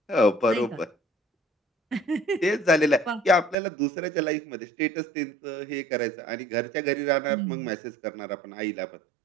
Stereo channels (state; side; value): drops out; left; at 3.6 s